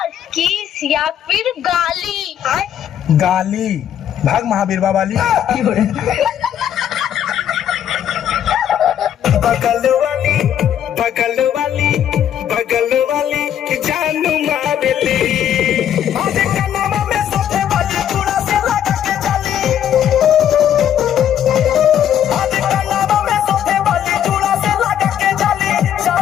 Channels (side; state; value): right; quieter; 10.0 dB